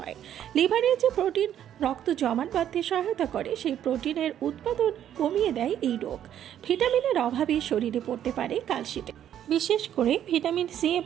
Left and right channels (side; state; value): left; quieter; 10.5 dB